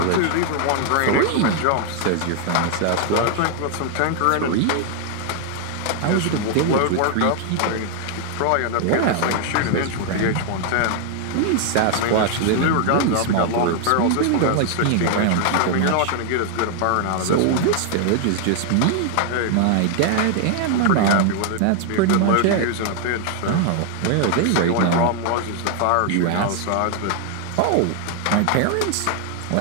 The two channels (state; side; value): different; both; correlation 0.00